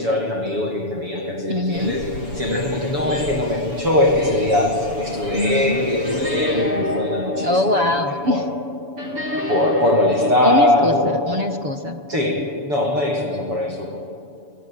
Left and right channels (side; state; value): left; late; 7.0 ms